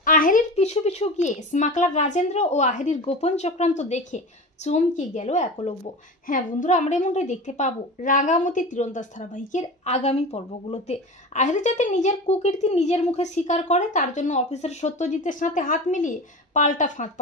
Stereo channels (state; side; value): normal; both; correlation 0.30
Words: আহেরির পিছু পিছু গিয়ে স্মাগলার রাজেন্দ্র ও আহেরির গোপন চক্রান্ত দেখে চমকে গেল একলব্য। হ্যাঁ বন্ধুরা, আমরা এমনটাই দেখতে পাবো রাঙামতি তীরন্দাজ ধারাবাহিকের আগামী পর্বগুলোতে। আহেরি যাতে নিজের কুকীর্তি নিজের মুখে স্বীকার করে, তার জন্য অফিসার সত্যজিতের সাথে হাত মিলিয়ে পাল্টা ফাঁদ